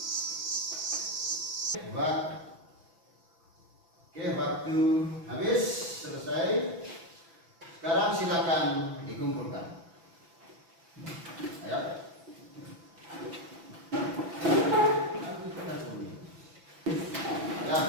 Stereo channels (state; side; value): late; left; 6.0 ms